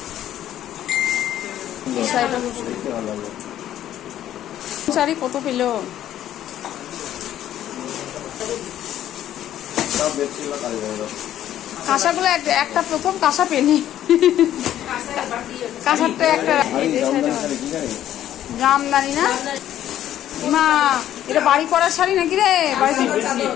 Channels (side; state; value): right; quieter; 11.8 dB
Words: শাড়ি কত পেল? কাঁসাগুলো একটা প্রথম কাঁসা পেনি, কাঁসারটা একটা জামদানি না মা, এটা বাড়ি করার শাড়ি নাকি রে?